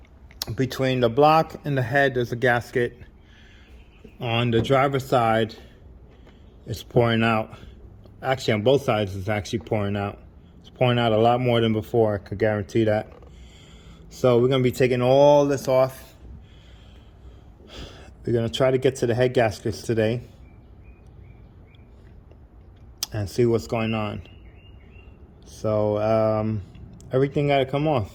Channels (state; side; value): identical; both; correlation 1.00